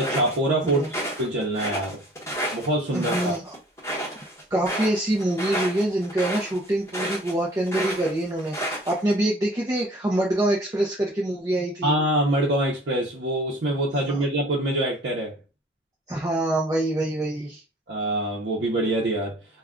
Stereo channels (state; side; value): normal; both; correlation 0.50